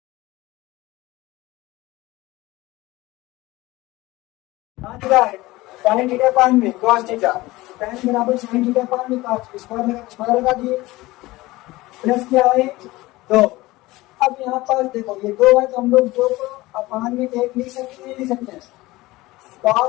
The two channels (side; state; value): right; quieter; 19.5 dB